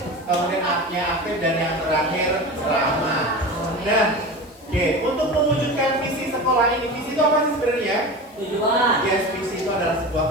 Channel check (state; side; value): noise; left; hiss, 28 dB below the sound